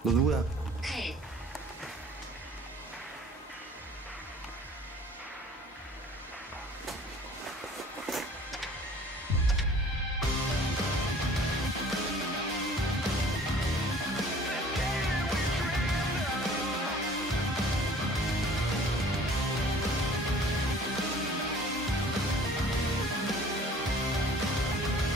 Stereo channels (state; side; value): normal; both; correlation 0.50